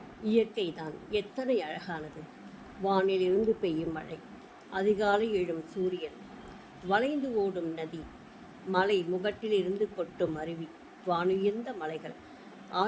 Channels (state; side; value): identical; both; correlation 1.00